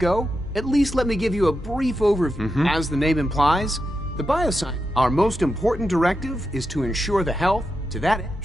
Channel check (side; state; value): both; normal; correlation 0.87